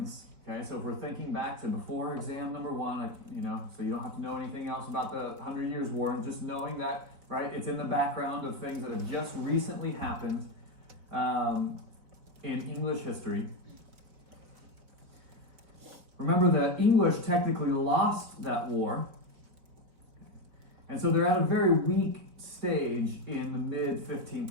okay, so if we're thinking back to before exam number 1, so you don't have to know anything else about the 100 Years' War, and just knowing that, right, it's in the background of things that have just recently happened in English history. Remember, the English technically lost that war, and so they're at a very weak stage in the mid-15th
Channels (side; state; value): left; late; 4.5 ms